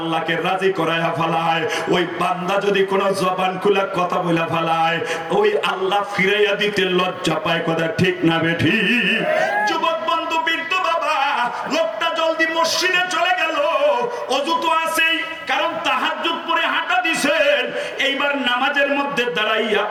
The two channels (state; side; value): identical; both; correlation 1.00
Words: রাজি করায়া ফেলায়, ওই বান্দা যদি কোনো জবান খুলে কথা বলে ফেলায়, ওই আল্লাহ ফিরাইয়া দিতে লজ্জা পায়। কথা ঠিক না বেঠি? যুবক বন্ধু, বৃদ্ধ বাবা, লোকটা জলদি মসজিদে চলে গেল। অজু তো আছেই, কারণ তাহাজ্জুদ পড়ে হাঁটা দিছেন। এইবার নামাজের মধ্যে দাঁড়াইয়া